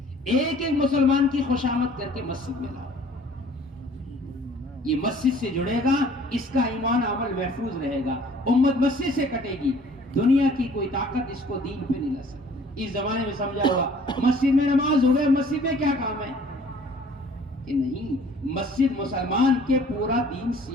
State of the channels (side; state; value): both; normal; correlation 0.53